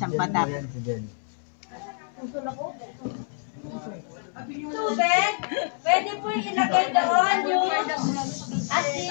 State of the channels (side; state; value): right; silent; 60 dB below the other